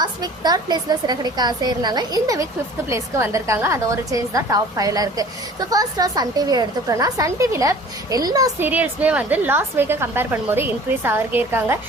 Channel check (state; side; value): normal; both; correlation 0.46